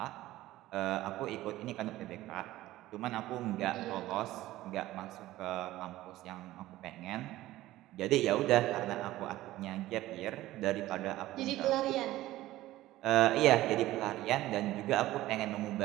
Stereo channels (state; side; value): quieter; left; 16.0 dB